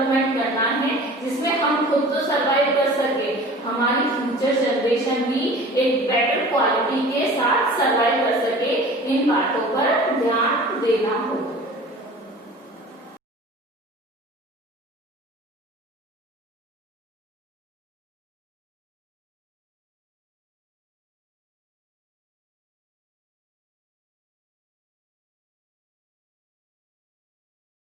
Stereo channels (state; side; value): normal; both; correlation 0.42